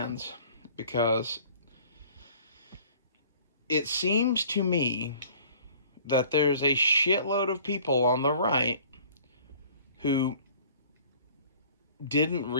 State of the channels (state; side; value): inverted; both; correlation -0.51